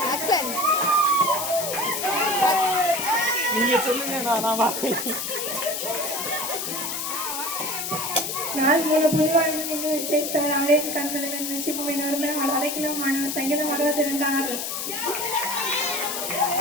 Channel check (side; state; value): left; noise; hiss, 3 dB below the sound